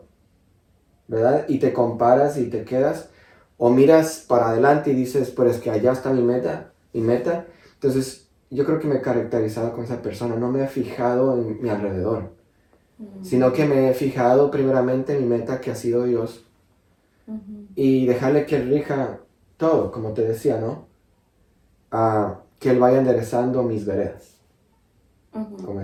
¿verdad? Y te comparas y te quedas, o miras para adelante y dices, pues es que allá está mi meta. Entonces, yo creo que me he caracterizado con esa persona, no me he fijado en mi alrededor, sino que me he fijado primeramente en mi meta, que ha sido Dios, y dejarle que Él rija todo, como te decía, ¿no? Que Él vaya enderezando mis veredas. Como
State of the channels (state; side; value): identical; both; correlation 1.00